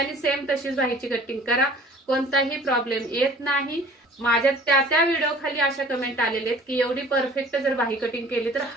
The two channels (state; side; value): normal; both; correlation 0.48